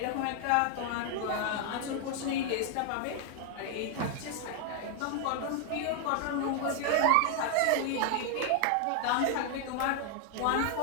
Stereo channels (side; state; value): both; different; correlation 0.00